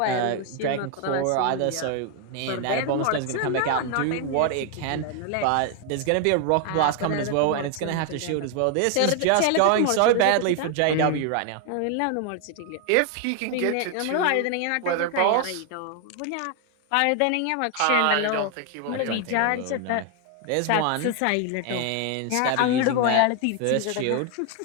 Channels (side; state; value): both; different; correlation 0.01